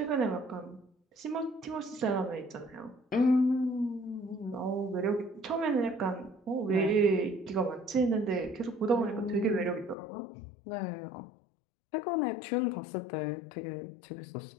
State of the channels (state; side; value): drops out; right; at 10.0 s